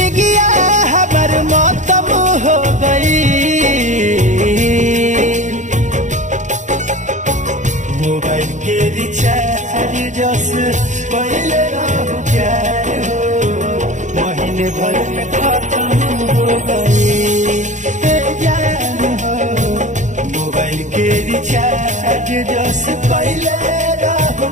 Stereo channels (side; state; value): left; late; 0.35 ms